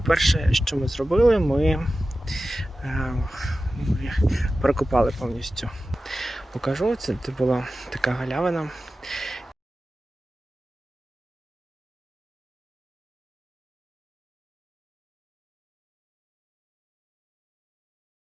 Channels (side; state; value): both; normal; correlation 0.94